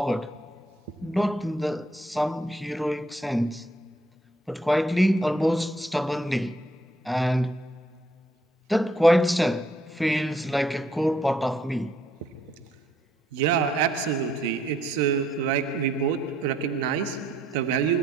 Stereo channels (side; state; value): both; normal; correlation 0.69